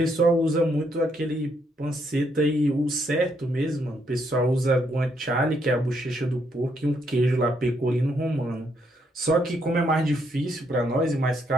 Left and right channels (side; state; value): both; normal; correlation 0.74